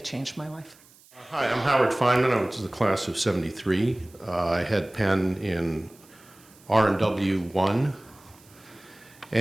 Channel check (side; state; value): right; noise; hiss, 27 dB below the sound